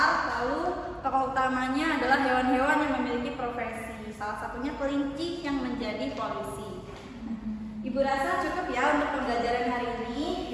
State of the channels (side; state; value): both; identical; correlation 1.00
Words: lalu tokoh utamanya adalah hewan-hewan yang memiliki profesi. Salah satunya kelinci yang menjadi polisi. Ibu rasa cukup ya untuk pembelajaran hari ini.